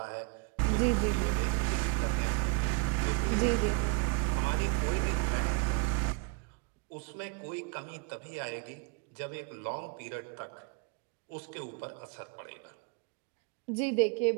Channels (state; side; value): quieter; left; 31.4 dB